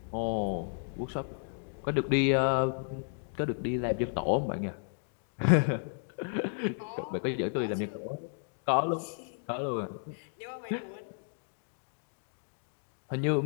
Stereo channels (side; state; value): right; silent; digital silence